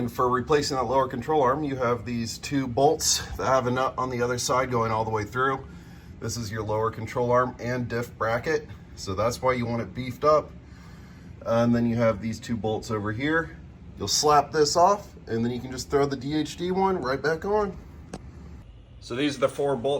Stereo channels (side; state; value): both; identical; correlation 1.00